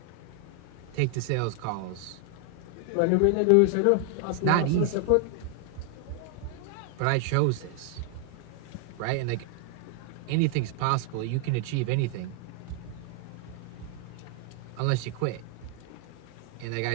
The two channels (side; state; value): both; different; correlation 0.00